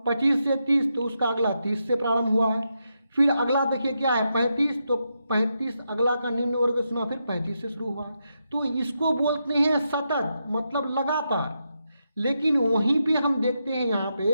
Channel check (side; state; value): both; inverted; correlation -0.84